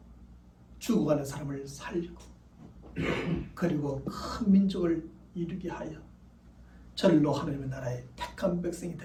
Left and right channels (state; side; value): identical; both; correlation 1.00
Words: 죽어가는 사람을 살리고 그리고 큰 민족을 이루게 하여 절로 하나님의 나라의 택한 백성이